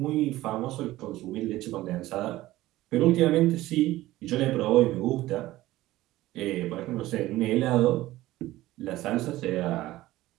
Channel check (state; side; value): quieter; left; 16.6 dB